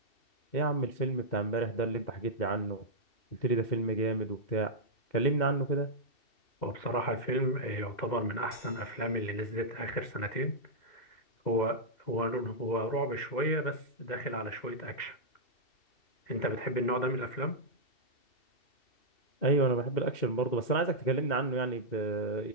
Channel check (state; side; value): late; right; 2.1 ms